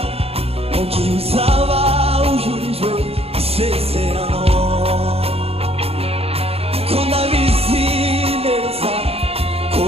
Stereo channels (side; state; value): left; late; 0.29 ms